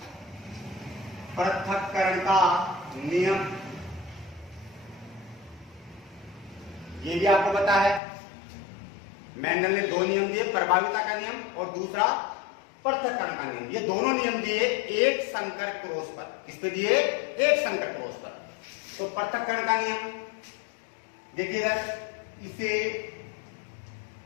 पृथक्करण का नियम ये भी आपको पता है। मेंडल ने दो नियम दिए, प्रभाविता का नियम और दूसरा पृथक्करण का नियम। ये दोनों नियम दिए एक संकर क्रॉस पर। किस पे दिए? एक संकर क्रॉस पर। तो पृथक्करण का नियम देखिएगा, इसे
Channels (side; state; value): right; drops out; at 8.0 s